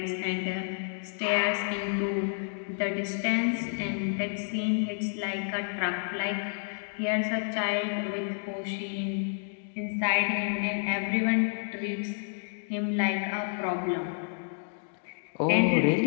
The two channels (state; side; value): silent; right; digital silence